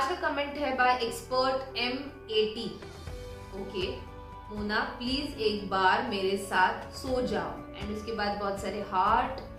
का कमेंट है बाय एक्सपर्ट M80। ओके, मोना प्लीज एक बार मेरे साथ सो जाओ, एंड उसके बाद बहुत सारे हार्ट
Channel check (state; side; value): identical; both; correlation 1.00